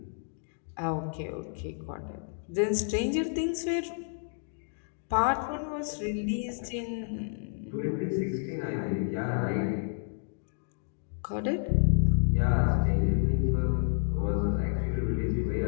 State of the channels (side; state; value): right; silent; digital silence